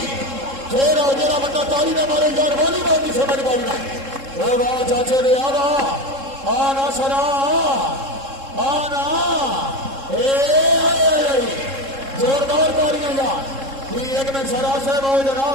जरा बंदा ताली ना मारे यार वॉलीबॉल की समझ पाई ना चाचे ने आना सरा आना जोरदार तालियां यार एक मिनट सरा साहब आओ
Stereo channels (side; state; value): left; late; 3.7 ms